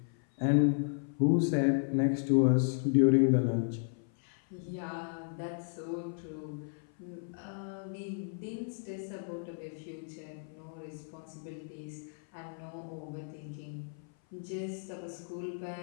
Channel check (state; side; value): silent; right; 55 dB below the other